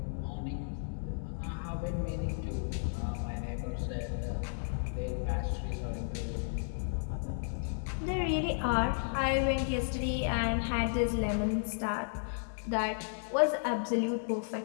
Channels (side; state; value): right; silent; digital silence